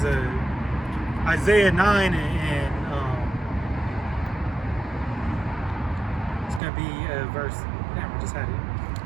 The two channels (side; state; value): left; drops out; at 6.6 s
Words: Isaiah 9 and it's gonna be verse. Damn, we just had it.